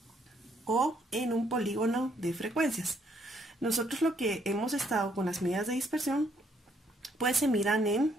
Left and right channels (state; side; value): normal; both; correlation 0.69